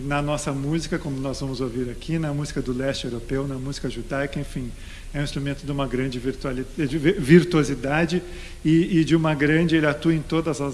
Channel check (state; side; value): identical; both; correlation 1.00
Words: nossa música, como nós vamos ouvir aqui, na música do leste europeu, na música judaica, enfim. É um instrumento de uma grande virtuosidade e de uma grande... Ele atua em todas